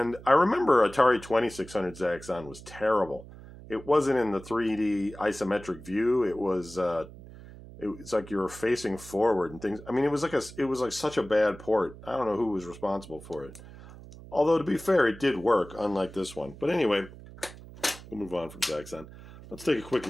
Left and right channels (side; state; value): right; noise; hum, 17 dB below the sound